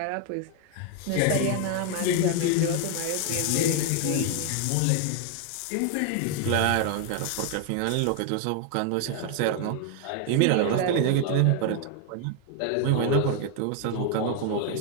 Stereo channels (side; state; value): both; different; correlation 0.00